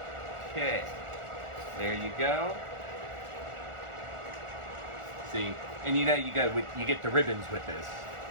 Okay, there you go. See, and you know you get the ribbons with this.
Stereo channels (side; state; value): left; late; 1.4 ms